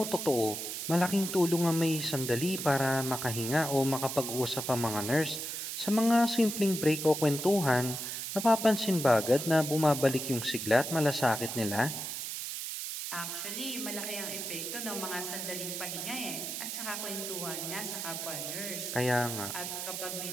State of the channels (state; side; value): noise; right; hiss, 5 dB below the sound